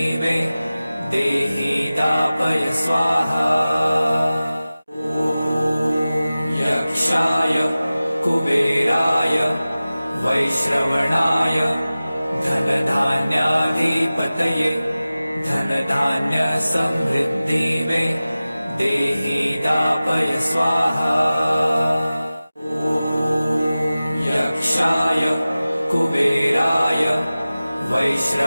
देहि दापय स्वाहा। यक्षाय कुबेराय वैश्रवणाय धनधान्याधिपतये धनधान्यसमृद्धिवे देहि दापय स्वाहा। यक्षाय कुबेराय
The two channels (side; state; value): both; inverted; correlation -0.97